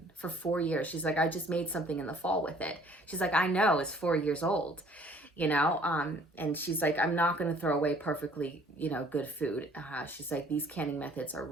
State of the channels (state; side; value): normal; both; correlation 0.56